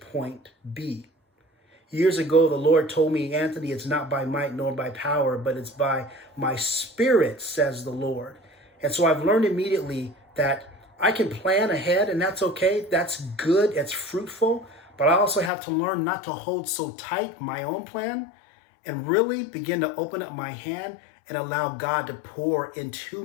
B? Years ago, the Lord told me, Anthony, it's not by might nor by power, but it's by my spirit, says the Lord. And so I've learned immediately that I can plan ahead, and that's okay. That's good. It's fruitful. But I also have to learn not to hold so tight my own plan and really begin to open up my hand and allow God to pour into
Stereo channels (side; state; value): right; drops out; at 15.5 s